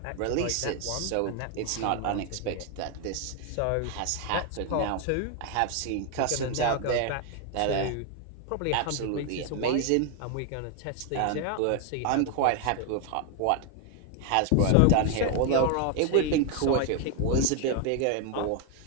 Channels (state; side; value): different; both; correlation 0.00